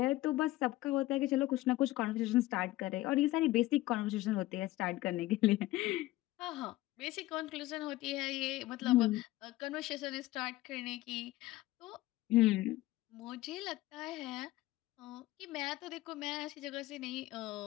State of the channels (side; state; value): right; quieter; 17.2 dB